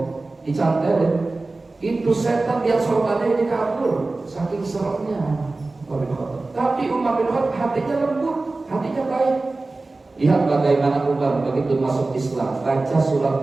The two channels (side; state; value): left; quieter; 3.3 dB